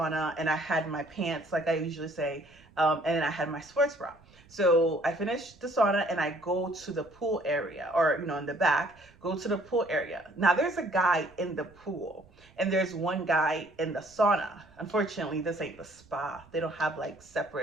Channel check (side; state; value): right; noise; rumble, 27 dB below the sound